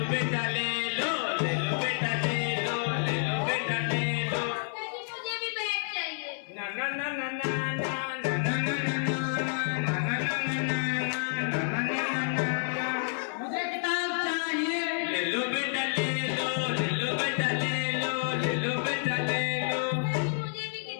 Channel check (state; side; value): silent; right; digital silence